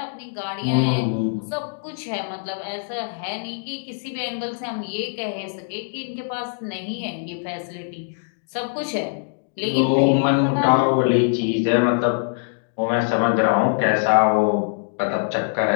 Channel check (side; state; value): right; silent; digital silence